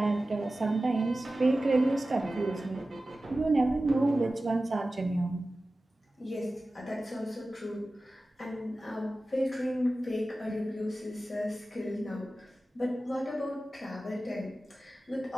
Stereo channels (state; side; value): normal; both; correlation 0.95